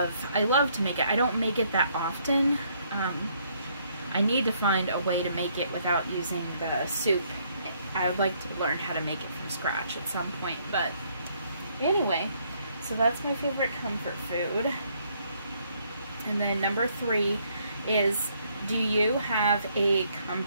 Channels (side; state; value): both; inverted; correlation -0.69